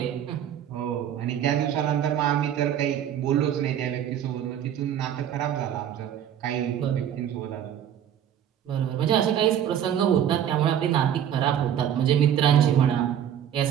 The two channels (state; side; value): quieter; left; 9.8 dB